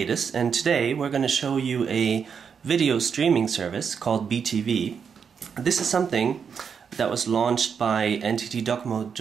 and today we're going to show you a video streaming service called BeeTV. This is something that was launched by NTT DoCoMo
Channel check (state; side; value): quieter; left; 6.6 dB